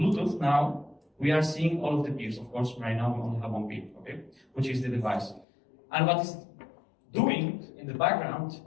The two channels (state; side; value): drops out; right; at 5.5 s